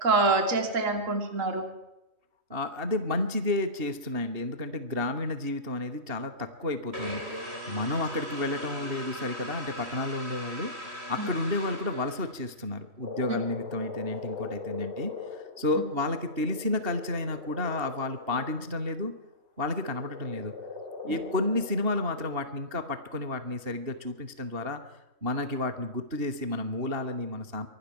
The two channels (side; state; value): left; late; 2.8 ms